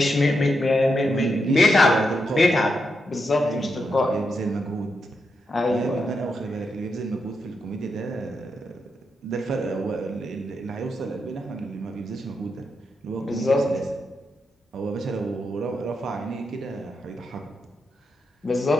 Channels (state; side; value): normal; both; correlation 0.84